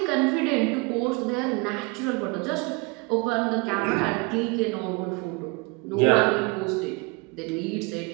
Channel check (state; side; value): quieter; left; 28.5 dB